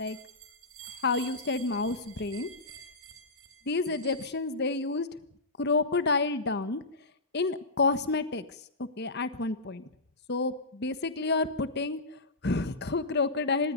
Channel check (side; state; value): right; quieter; 3.1 dB